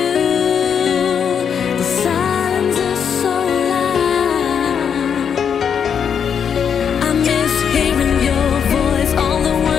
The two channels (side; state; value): right; quieter; 7.5 dB